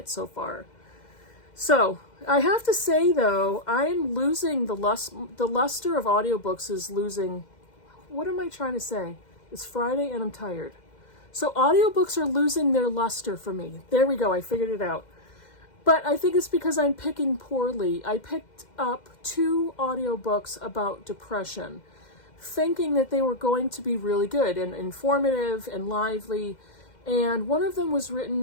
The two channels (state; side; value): late; right; 2.1 ms